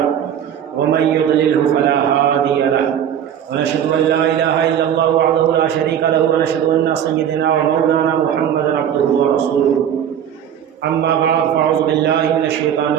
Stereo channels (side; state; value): left; quieter; 9.4 dB